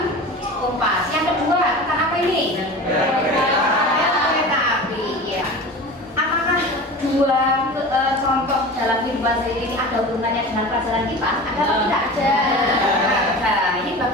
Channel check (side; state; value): both; normal; correlation 0.34